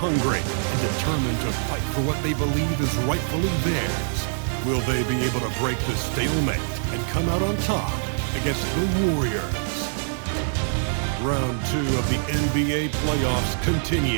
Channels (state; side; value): silent; left; digital silence